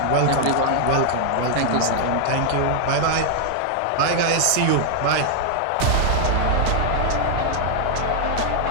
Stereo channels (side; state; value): both; different; correlation -0.01